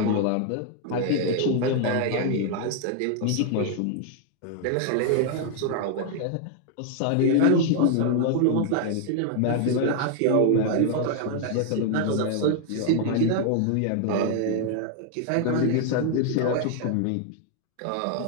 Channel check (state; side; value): different; both; correlation 0.00